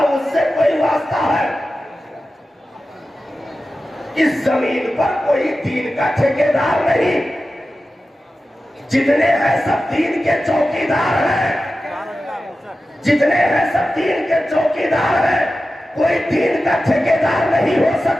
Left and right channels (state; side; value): normal; both; correlation 0.93